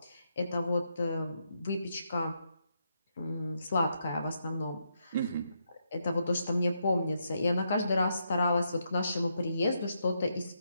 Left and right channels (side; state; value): both; inverted; correlation -0.80